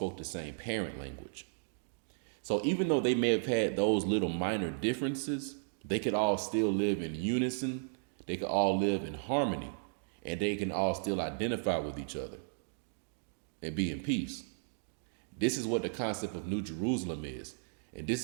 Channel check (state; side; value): silent; left; digital silence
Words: the same parent language. So even though they may have had those little minor differences, they could all still live in unison. They could all live in harmony, and they can all still identify with each other and be in peace. This is what the concept of New Jerusalem is. And this